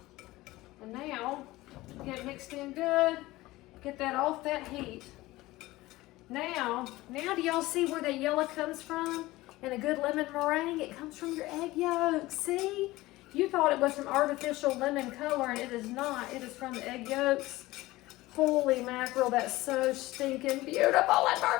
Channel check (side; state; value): right; quieter; 18.6 dB